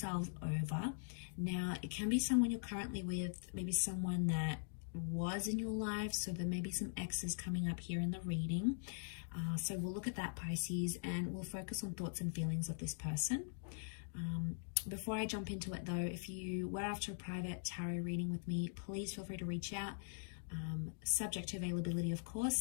over. Now it can be someone you're currently with, maybe someone that was in your life, so there may be some exes coming up here in the reading. So we'll look at that, Pisces, and we'll focus on thoughts and feelings of this person. Before I jump into it though, if you were after a private tarot reading with me, please feel free to reach out, subject to availability of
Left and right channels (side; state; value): right; silent; digital silence